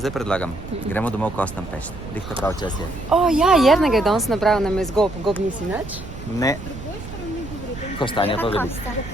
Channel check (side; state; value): right; noise; rumble, 12 dB below the sound